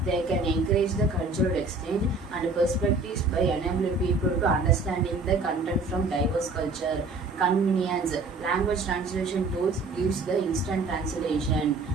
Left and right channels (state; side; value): quieter; left; 3.6 dB